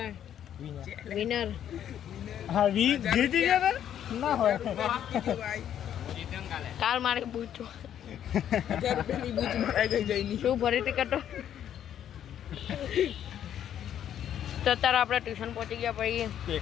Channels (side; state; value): right; quieter; 10.1 dB